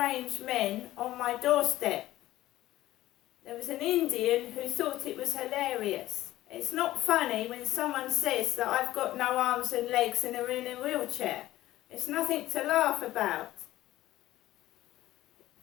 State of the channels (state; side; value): quieter; right; 15.3 dB